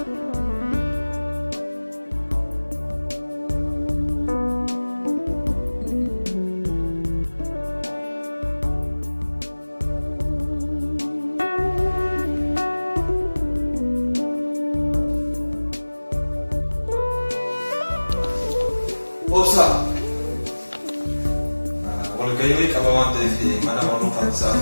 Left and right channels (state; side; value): inverted; both; correlation -1.00